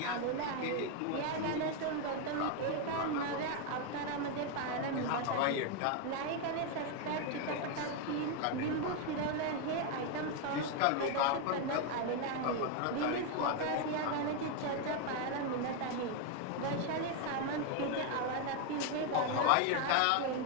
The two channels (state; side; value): different; both; correlation 0.01